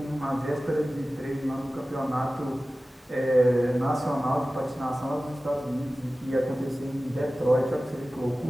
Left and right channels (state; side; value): normal; both; correlation 0.96